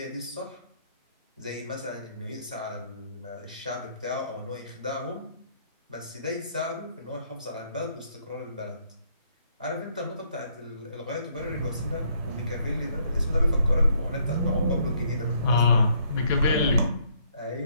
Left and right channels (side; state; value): both; inverted; correlation -0.68